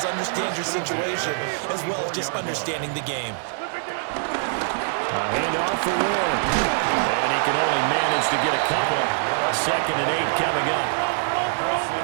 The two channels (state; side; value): silent; left; 63 dB below the other